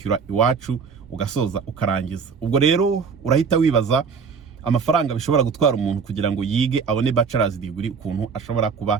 iwacu ugasoza ukarangiza. Ubwo rero urahita wibaza amafaranga bishobora gutwara umuntu kugira ngo yige abone bachelor's degree ukuntu ashobora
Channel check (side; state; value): left; quieter; 5.7 dB